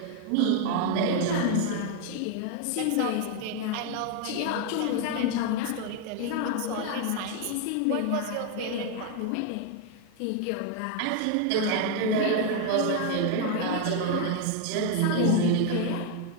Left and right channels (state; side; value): different; both; correlation 0.01